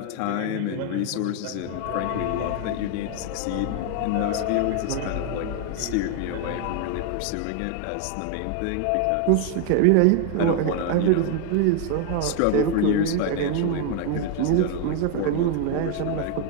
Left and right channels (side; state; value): both; different; correlation 0.01